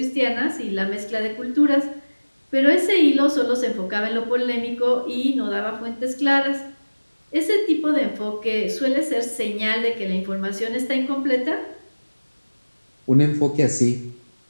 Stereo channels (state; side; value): inverted; both; correlation -1.00